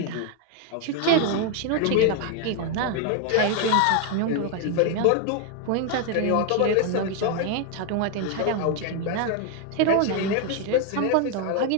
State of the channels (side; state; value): both; different; correlation 0.01